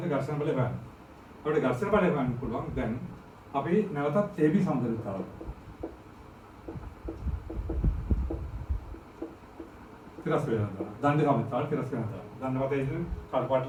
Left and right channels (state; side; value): identical; both; correlation 1.00